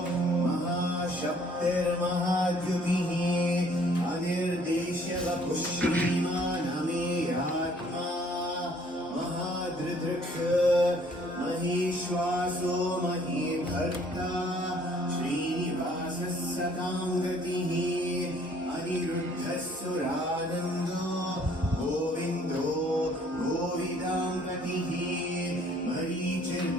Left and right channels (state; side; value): normal; both; correlation 0.60